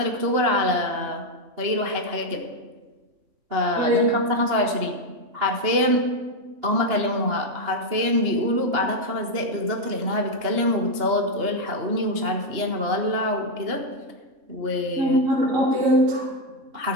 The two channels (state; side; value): late; left; 2.9 ms